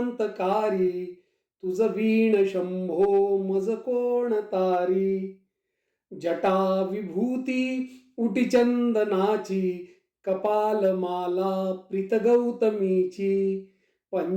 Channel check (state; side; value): identical; both; correlation 1.00